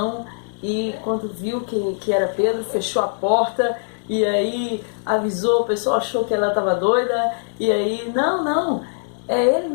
e quando viu que era Pedro, fechou a porta e aí avisou, o pessoal achou que ela estava doida e aí, não, é ele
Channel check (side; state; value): right; silent; digital silence